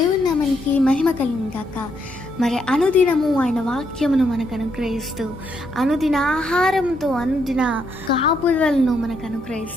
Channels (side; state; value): left; noise; hum, 20 dB below the sound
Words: నామానికి మహిమ కలుగును గాక. మరి అనుదినము ఆయన వాక్యమును మనకు అనుగ్రహిస్తూ, అనుదిన ఆహారంతో అనుదిన కాపుదలను మనకు